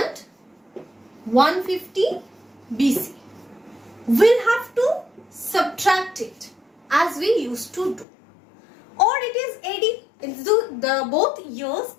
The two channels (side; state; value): right; drops out; at 8.1 s